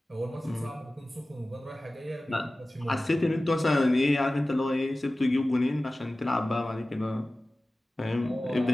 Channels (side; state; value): both; normal; correlation 0.97